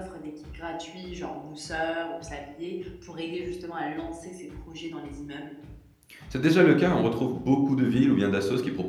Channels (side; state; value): both; identical; correlation 1.00